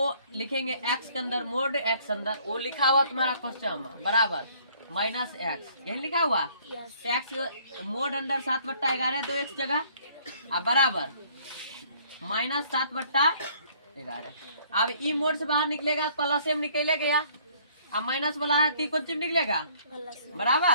लिखेंगे x के अंदर मोड x अंदर, वो लिखा हुआ तुम्हारा क्वेश्चन में बराबर -x, यही लिखा हुआ x मोड अंडर 7/11 दो x जगह बराबर -7/11। अब ई मोड से बाहर निकलेगा प्लस में निकले गया, अब माइनस वाला है तो कौन चीज निकलेगा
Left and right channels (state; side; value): inverted; both; correlation -0.60